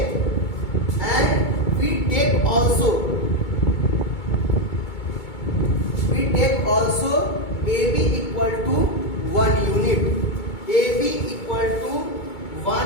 and we take also AB equal to 1 unit. AB equal to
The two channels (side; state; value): right; late; 2.2 ms